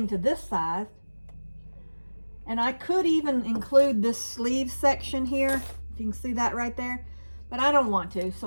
to this side. And I could even include this sleeve section here, if you can see that right there. But I don't want to,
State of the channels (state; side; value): inverted; both; correlation -1.00